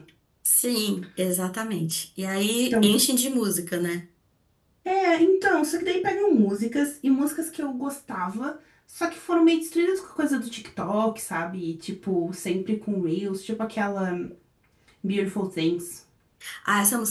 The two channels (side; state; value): both; identical; correlation 1.00